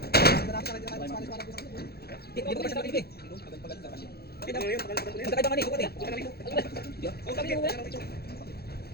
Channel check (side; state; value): right; late; 0.46 ms